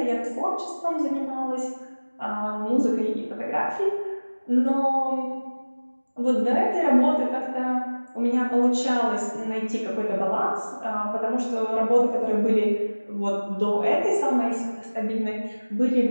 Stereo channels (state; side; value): inverted; both; correlation -1.00